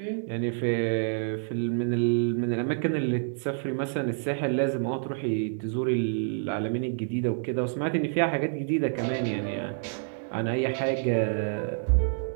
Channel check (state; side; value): silent; left; digital silence